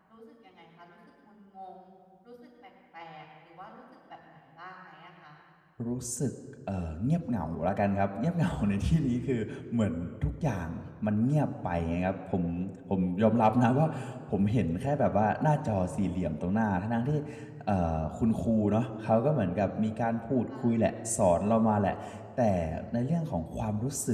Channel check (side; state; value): both; identical; correlation 1.00